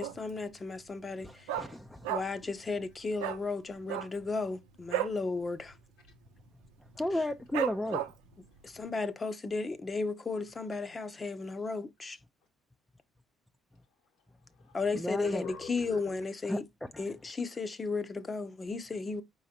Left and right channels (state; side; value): normal; both; correlation 0.76